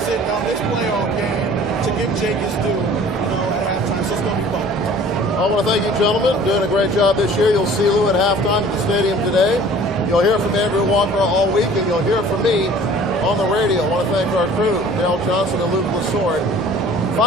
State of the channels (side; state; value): both; normal; correlation 0.49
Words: it on this playoff game to give Jake his due, at halftime? So it's going to be fun. I want to thank you, gentlemen. Doing a great job this year. You'll see Lou at halftime at the stadium today. You'll hear from Andrew Walker all week, and you'll hear from me on the radio. I want to thank our crew, Dale Johnson and Luke Lesord.